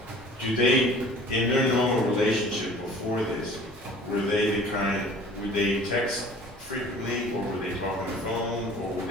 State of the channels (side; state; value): both; normal; correlation 0.48